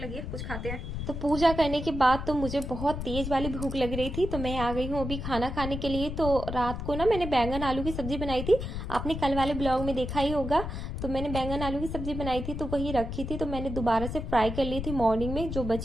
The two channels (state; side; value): noise; left; rumble, 5 dB below the sound